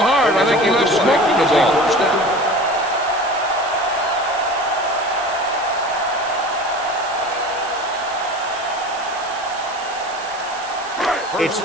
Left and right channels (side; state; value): right; noise; hiss, 16 dB below the sound